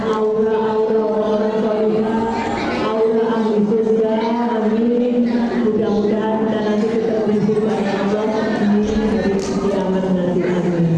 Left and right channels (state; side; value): identical; both; correlation 1.00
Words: aura-aura orang soleh, aura ahli surga. Amin. Mudah-mudahan kita nanti ketemu dengan Allah di hari kiamat nanti.